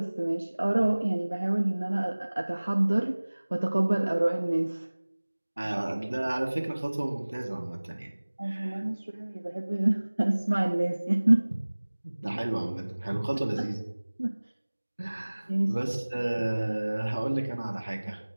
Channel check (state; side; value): inverted; both; correlation -1.00